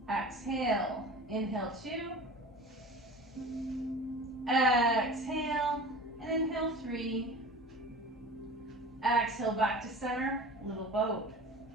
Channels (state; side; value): normal; both; correlation 0.37